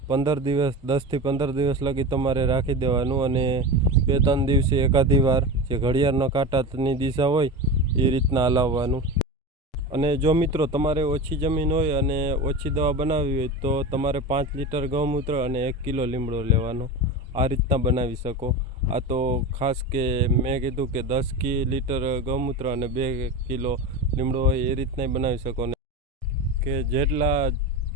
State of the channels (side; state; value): both; normal; correlation 0.25